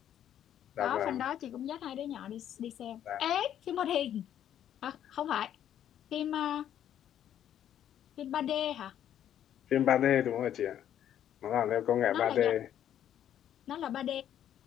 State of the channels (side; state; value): right; quieter; 10.4 dB